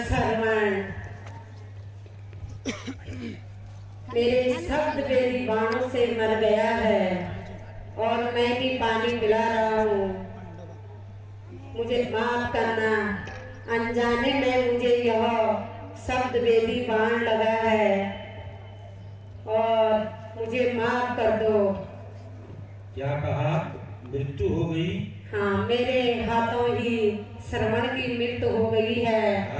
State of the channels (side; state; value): both; identical; correlation 1.00